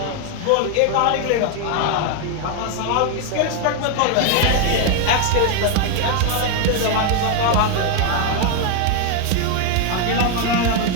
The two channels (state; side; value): different; both; correlation 0.01